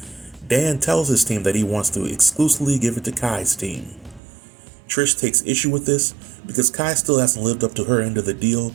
Dan tells his team that he wants to exclusively give it to Kai's team. Trish takes issue with this because Kai still hasn't lived up to her end of the deal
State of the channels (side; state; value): left; drops out; at 4.2 s